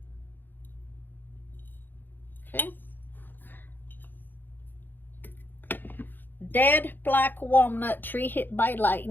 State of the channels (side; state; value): right; late; 0.091 ms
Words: Okay. Dead black walnut tree hit by